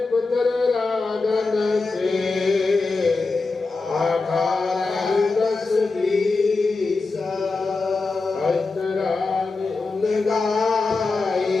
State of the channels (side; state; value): right; quieter; 3.9 dB